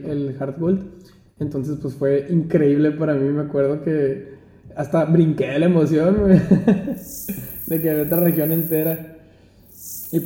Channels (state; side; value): identical; both; correlation 1.00